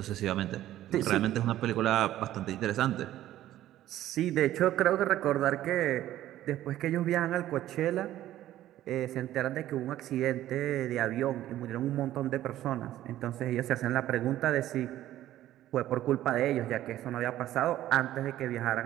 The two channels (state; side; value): quieter; left; 13.5 dB